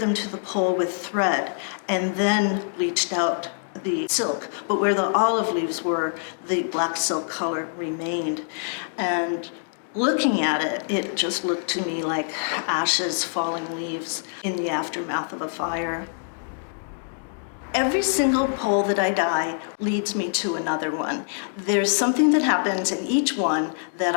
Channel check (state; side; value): silent; right; digital silence